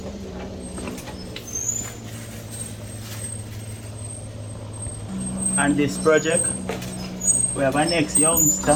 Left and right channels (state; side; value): identical; both; correlation 1.00